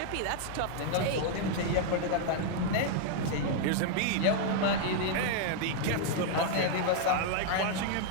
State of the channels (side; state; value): both; different; correlation -0.01